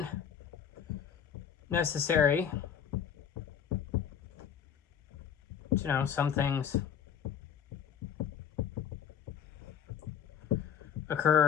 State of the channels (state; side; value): quieter; right; 8.4 dB